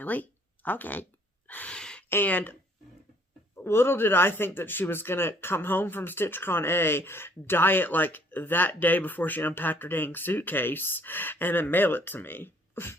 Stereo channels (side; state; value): both; normal; correlation 0.61